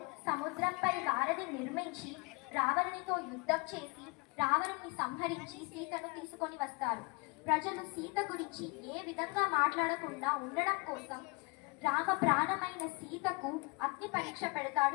సముద్రంపై వారధి నిర్మించి రావణునితో యుద్ధం చేసి రావణుని సంహరించి సీతను తీసుకొని వస్తారు. ప్రజలు సీత గురించి ఏ విధంగా మాట్లాడకుండా ఉండడం కోసం రామ ప్రాణమైన సీతకు అగ్ని పరీక్ష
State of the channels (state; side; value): quieter; right; 29.1 dB